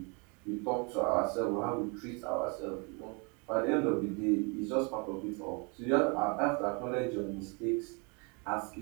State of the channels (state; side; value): quieter; left; 33.0 dB